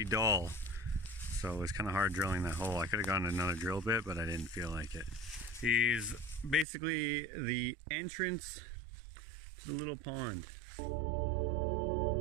dull, so it was kind of hard drilling that hole. I could have gotten another drill bit, but I didn't feel like it. He's basically the entrance to the little pond.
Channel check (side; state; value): left; drops out; at 6.7 s